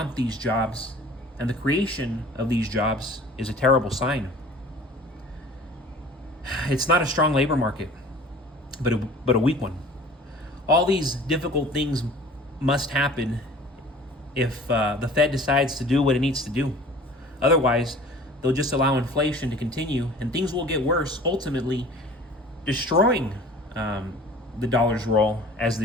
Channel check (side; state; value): both; normal; correlation 0.46